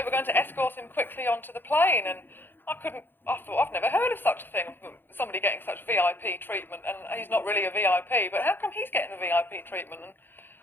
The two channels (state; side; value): late; right; 0.099 ms